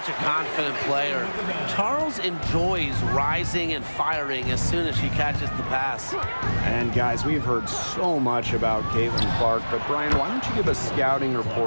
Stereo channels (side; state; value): both; inverted; correlation -1.00